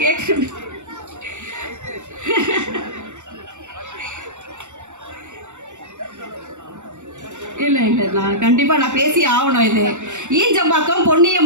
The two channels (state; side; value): late; left; 0.84 ms